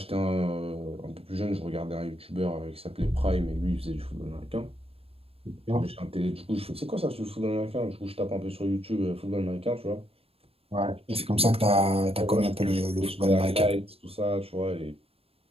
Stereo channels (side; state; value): left; late; 0.28 ms